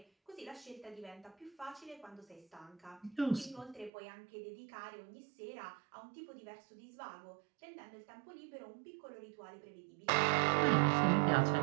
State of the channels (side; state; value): left; drops out; at 3.9 s